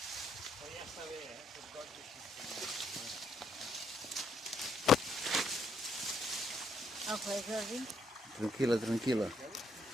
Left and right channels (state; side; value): normal; both; correlation 0.73